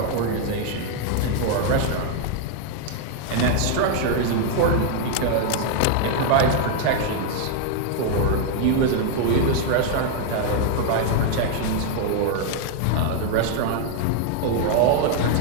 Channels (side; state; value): both; different; correlation 0.00